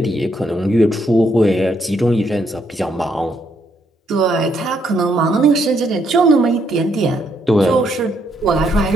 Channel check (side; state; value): both; normal; correlation 0.74